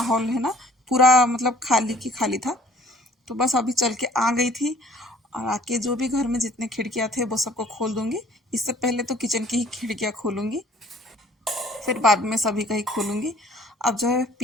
है ना पूरा मतलब खाली की खाली था। तो बस अभी चल के आ गई थी, और आके जो भी घर में जितने खिड़कियाँ थे वो सबको खोल दूँगी। इससे पहले तो किचन की ही खिड़कियाँ खोलूँगी, फिर बाद में सभी का ही खोलूँगी। अब जो है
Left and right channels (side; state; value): both; normal; correlation 0.55